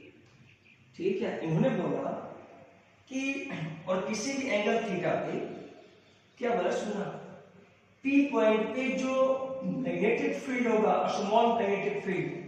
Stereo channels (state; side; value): identical; both; correlation 1.00